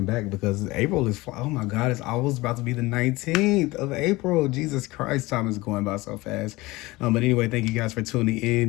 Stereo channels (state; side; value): quieter; right; 21.0 dB